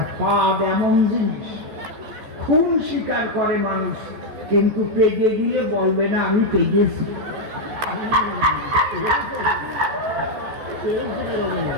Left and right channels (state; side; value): late; left; 14 ms